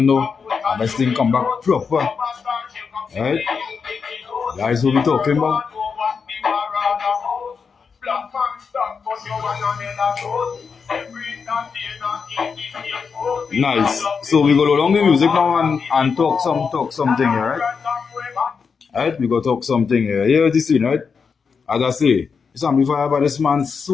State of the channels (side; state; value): right; quieter; 5.7 dB